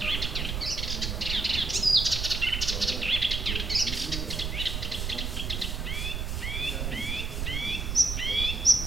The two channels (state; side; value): noise; right; rumble, 2 dB below the sound